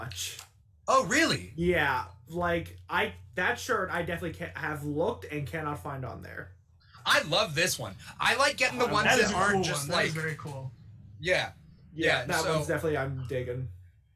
Oh, really? Yeah. Like, that shirt I definitely have looked and cannot find on there. I love this one. I like getting the ones that aren't cool just one. like... That is very cool. Yeah, that one's definitely I'm digging.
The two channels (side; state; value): both; identical; correlation 1.00